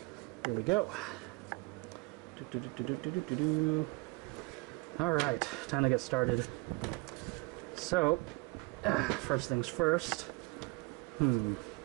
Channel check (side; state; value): left; quieter; 25.8 dB